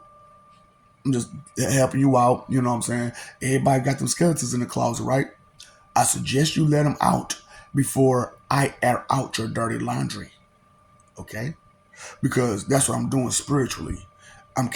I'm just helping you out. You know what I'm saying? Everybody got them skeletons in the closet, right? I suggest you let them out before I air out your dirty laundry. Okay? Because that's what I'm doing spiritually. I'm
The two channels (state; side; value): identical; both; correlation 1.00